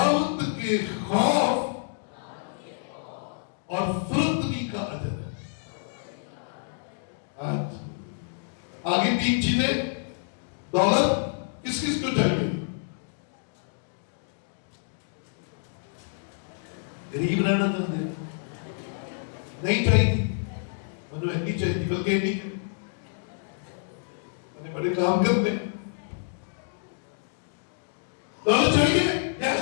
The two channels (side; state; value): right; silent; digital silence